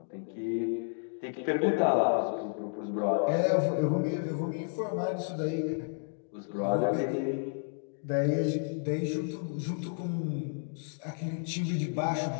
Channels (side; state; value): right; silent; digital silence